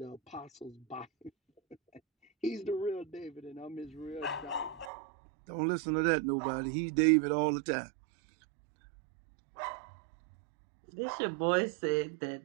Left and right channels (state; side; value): drops out; left; at 4.9 s